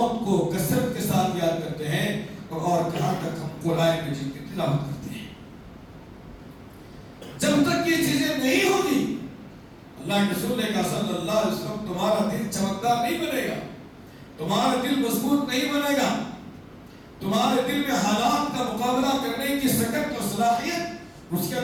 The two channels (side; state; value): both; identical; correlation 1.00